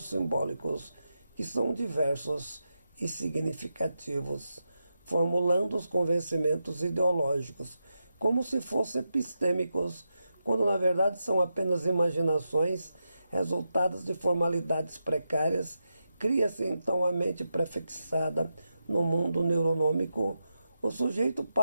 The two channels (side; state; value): both; inverted; correlation -0.88